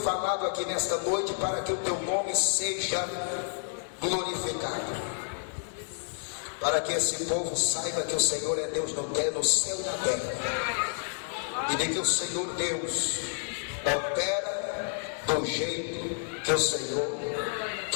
aqui nesta noite, para que o teu nome seja glorificado, para que esse povo saiba que o Senhor é Deus no céu e na terra, e de que o Senhor Deus opera do jeito que o Senhor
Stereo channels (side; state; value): right; silent; digital silence